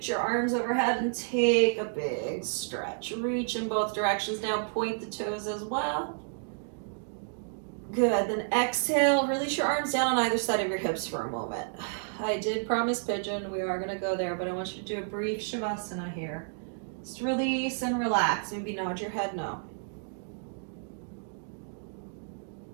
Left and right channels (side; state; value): left; silent; digital silence